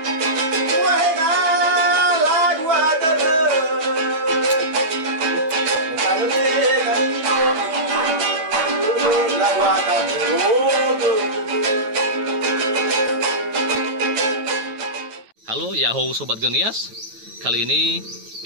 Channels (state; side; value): late; left; 9.3 ms